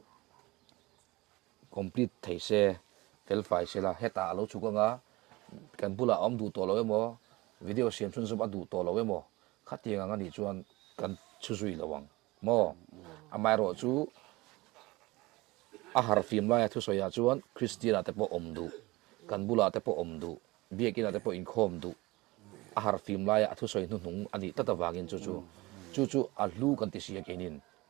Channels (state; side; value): quieter; left; 21.6 dB